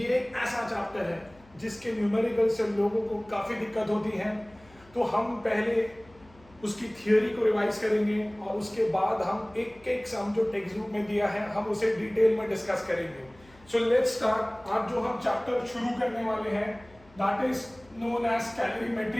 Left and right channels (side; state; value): left; noise; hum, 26 dB below the sound